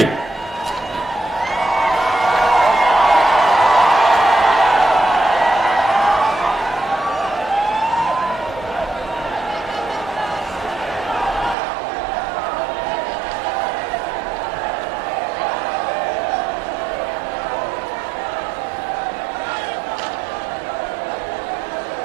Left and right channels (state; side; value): drops out; left; at 11.6 s